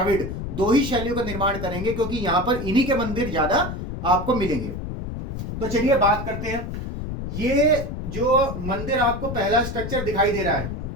दो ही शैलियों का निर्माण करेंगे क्योंकि यहां पर इन्हीं के मंदिर ज्यादा आपको मिलेंगे। तो चलिए बात करते हैं। ये जो मंदिर आपको पहला स्ट्रक्चर दिखाई दे रहा है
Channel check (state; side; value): noise; left; rumble, 6 dB below the sound